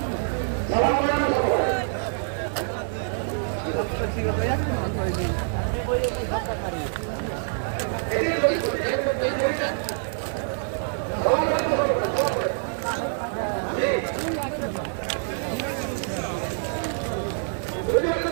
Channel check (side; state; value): left; silent; digital silence